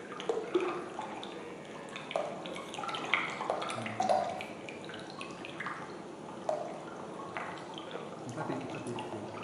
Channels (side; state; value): both; identical; correlation 1.00